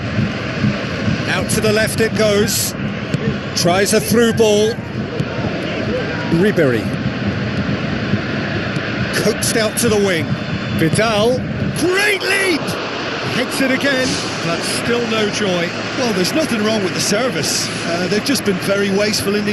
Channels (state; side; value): identical; both; correlation 1.00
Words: Out to the left it goes. Tries a through ball. Ribery. Coaxed out to the wing. Vidal. Great lead! Hits it again, but still no joy. Well, there's nothing wrong with the service. They've just been very wasteful in the